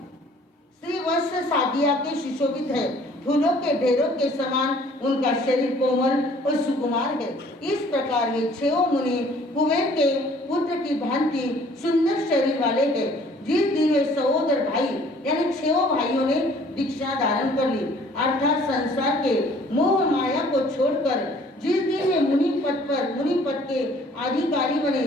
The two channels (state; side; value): normal; both; correlation 0.56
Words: श्रीवत्स सादिया के सुशोभित है। फूलों के ढेरों के समान उनका शरीर कोमल और सुकुमार है। इस प्रकार वे 6 मुनि कुबेर के पुत्र की भांति सुंदर शरीर वाले हैं। जिस दिन वे सहोदर भाई यानी 6 भाइयों ने दीक्षा धारण कर ली, अर्थात संसार के मोह माया को छोड़कर जिस दिन वे मुनि पद के अधिकारी बने,